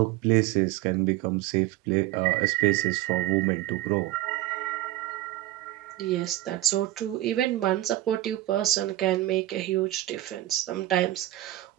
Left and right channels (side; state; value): left; quieter; 15.7 dB